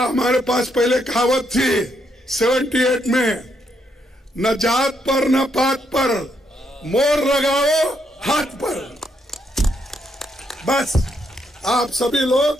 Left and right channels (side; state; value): both; normal; correlation 0.77